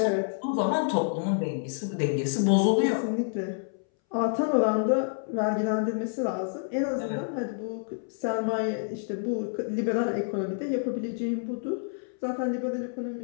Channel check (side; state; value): right; silent; 59 dB below the other